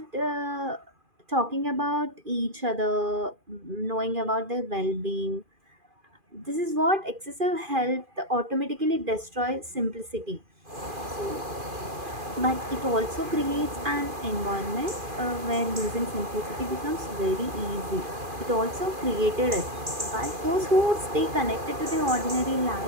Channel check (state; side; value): late; left; 2.4 ms